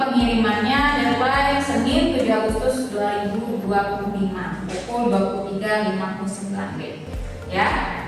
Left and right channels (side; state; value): both; identical; correlation 1.00